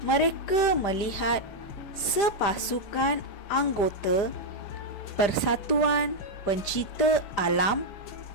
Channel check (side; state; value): right; late; 5.0 ms